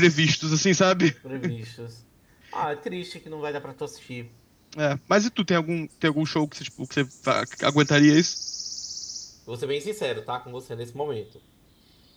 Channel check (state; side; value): identical; both; correlation 1.00